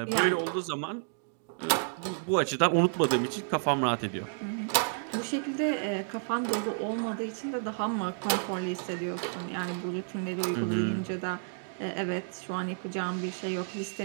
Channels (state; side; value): silent; left; digital silence